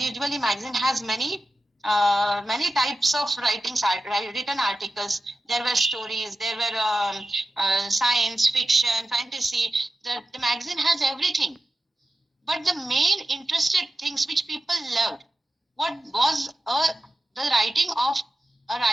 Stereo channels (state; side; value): normal; both; correlation 0.93